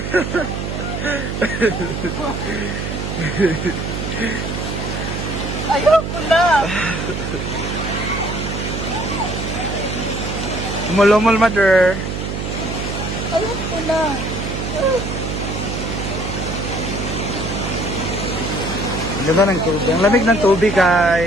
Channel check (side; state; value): right; noise; hum, 4 dB below the sound